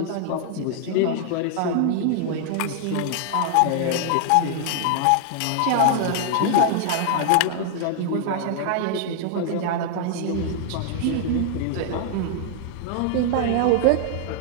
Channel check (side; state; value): both; different; correlation 0.00